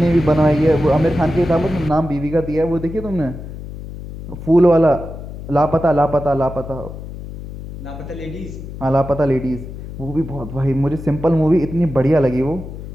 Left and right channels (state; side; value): noise; left; hum, 11 dB below the sound